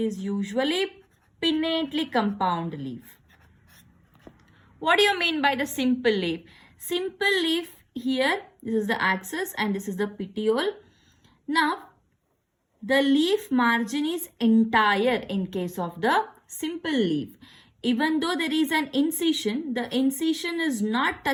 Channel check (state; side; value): identical; both; correlation 1.00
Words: usually pinnately compound leaf. What do you mean by the simple leaf? Simple leaf here, this is the axis and this is the petiole. Now the leaf margin is entire in case of the simple leaf. Even though there is an incision, the incision is not